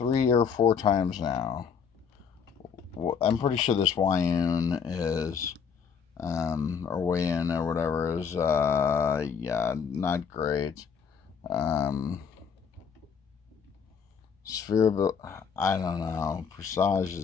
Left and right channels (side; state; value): right; quieter; 6.6 dB